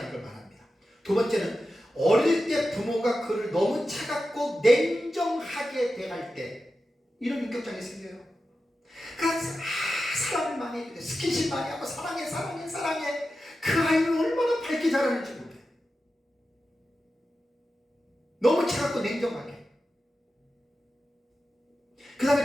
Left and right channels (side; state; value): both; normal; correlation 0.92